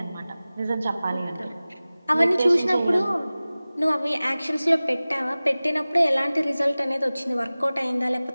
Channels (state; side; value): inverted; both; correlation -0.98